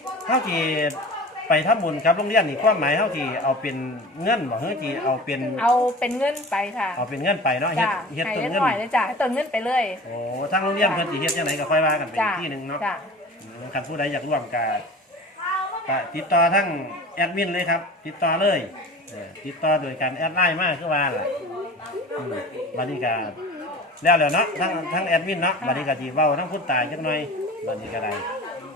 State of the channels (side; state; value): both; normal; correlation 0.37